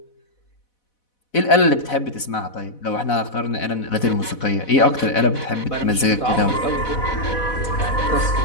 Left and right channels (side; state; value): right; late; 4.1 ms